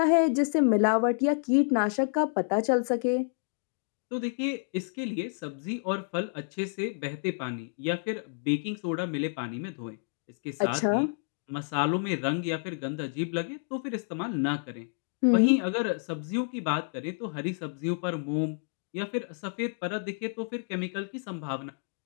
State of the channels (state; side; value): silent; right; digital silence